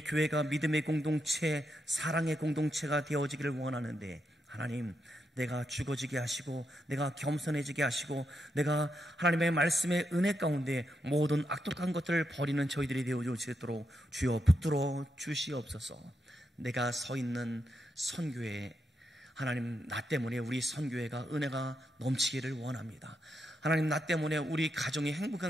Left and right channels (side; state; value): both; normal; correlation 0.83